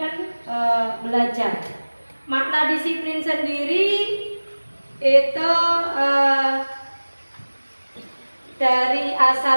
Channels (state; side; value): inverted; both; correlation -1.00